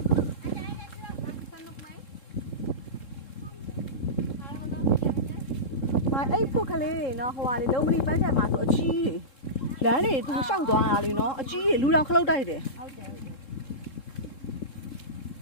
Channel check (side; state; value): right; late; 3.7 ms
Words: အဲ့ဖုတ်ကလေးတွေနော်ဟိုဟာလေလုံးမလီပန်းချံမှာဆိုအကြီးတွေလမ်းတွေသူရှောက်သွားတာလေနော်အကြီးတွေလူတော်ခလုတ်တိုက်တယ်ဟုတ်တယ်